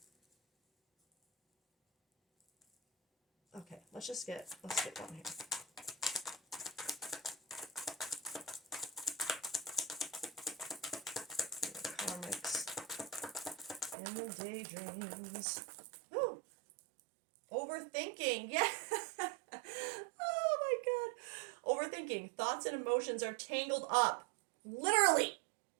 okay, let's get one here. Karmics in the daydreams. Ooh, overthinking. Yeah. Oh my god. Overthinking. Thoughts and emotions are tangled up. Literally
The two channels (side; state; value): left; drops out; at 14.0 s